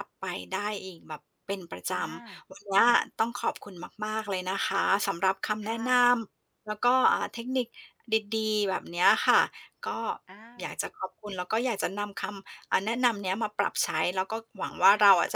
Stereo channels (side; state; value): both; identical; correlation 1.00